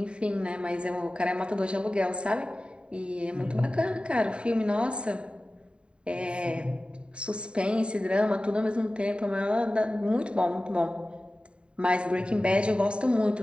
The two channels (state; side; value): late; left; 0.054 ms